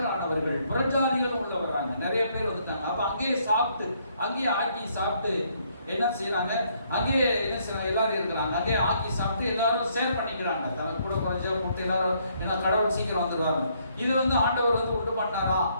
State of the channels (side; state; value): both; inverted; correlation -0.69